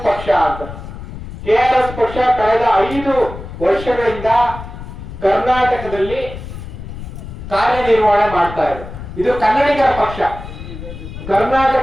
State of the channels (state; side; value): noise; left; rumble, 11 dB below the sound